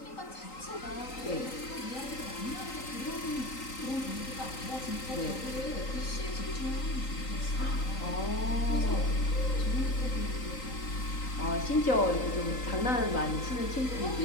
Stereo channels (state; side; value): late; right; 3.9 ms